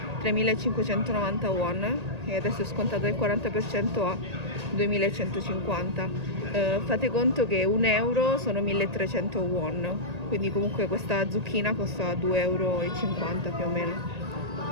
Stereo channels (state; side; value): late; left; 1.8 ms